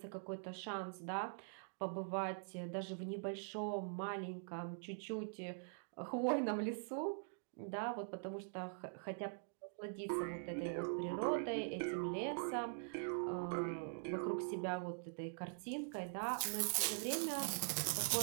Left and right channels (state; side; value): silent; left; digital silence